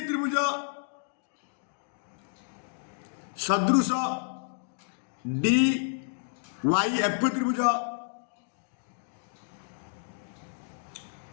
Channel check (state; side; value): silent; right; digital silence